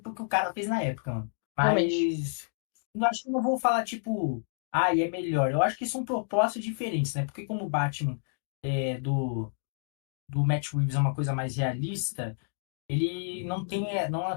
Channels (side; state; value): right; silent; digital silence